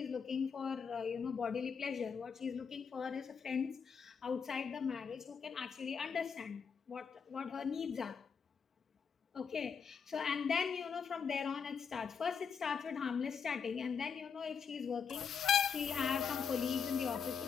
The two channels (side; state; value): right; quieter; 6.4 dB